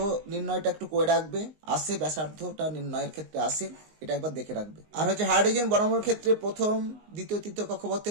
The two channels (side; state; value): left; late; 19 ms